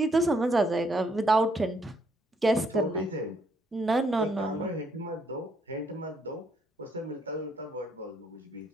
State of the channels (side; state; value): both; normal; correlation 0.71